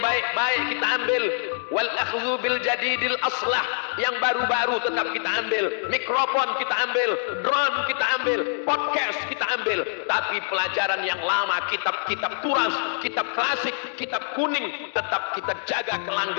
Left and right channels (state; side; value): silent; right; digital silence